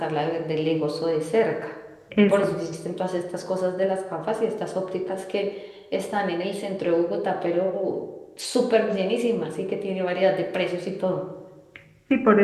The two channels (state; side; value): identical; both; correlation 1.00